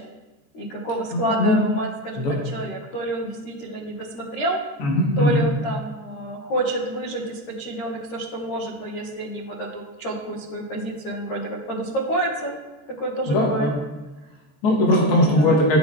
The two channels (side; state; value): right; late; 13 ms